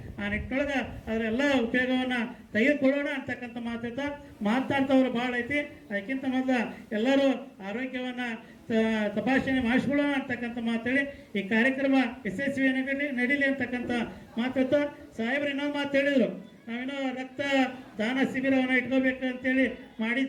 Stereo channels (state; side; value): identical; both; correlation 1.00